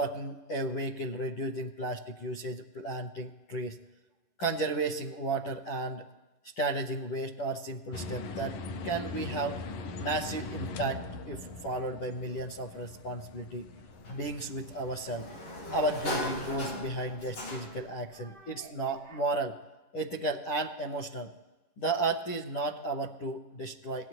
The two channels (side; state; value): right; late; 11 ms